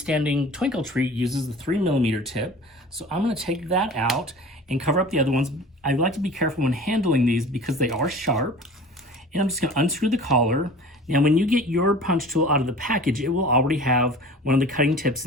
twinkle tree, uses the 3mm tip. So I'm going to take that out and cover up the other ones. I like to be careful when handling these because they are sharp. And I'm just going to unscrew the collar. Now when you get your punch tool out of the package, it will already have one of the cutting tips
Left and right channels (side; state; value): both; normal; correlation 0.41